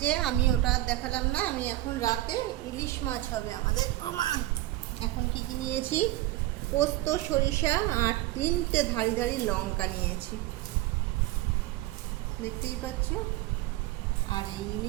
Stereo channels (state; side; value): quieter; left; 16.7 dB